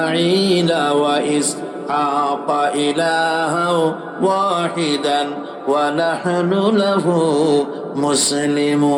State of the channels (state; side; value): identical; both; correlation 1.00